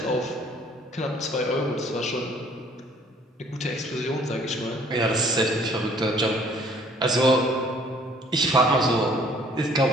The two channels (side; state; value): both; normal; correlation 0.57